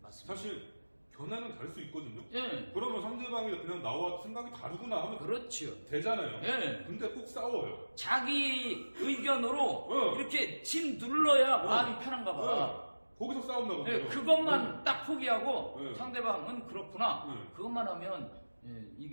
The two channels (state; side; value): inverted; both; correlation -1.00